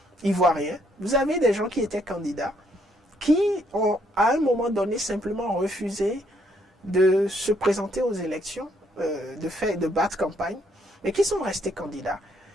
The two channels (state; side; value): normal; both; correlation 0.70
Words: ivoirien, vous avez des gens qui étaient candidats, qui ont à un moment donné simplement refusé de se présenter aux élections, de battre campagne, mais qui sont restés candidats.